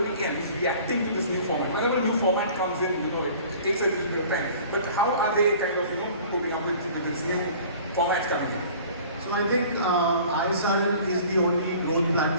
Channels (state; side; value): inverted; both; correlation -0.47